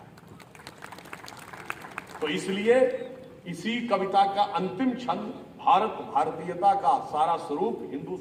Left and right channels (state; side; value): identical; both; correlation 1.00